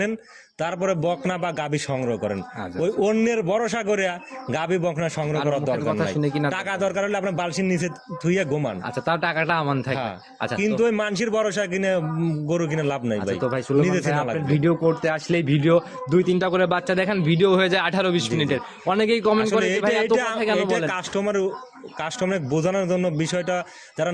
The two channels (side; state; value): both; identical; correlation 1.00